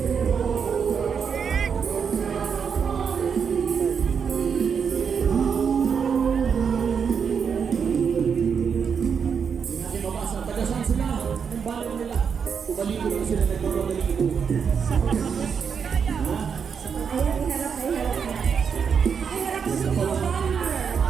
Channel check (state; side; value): quieter; left; 6.6 dB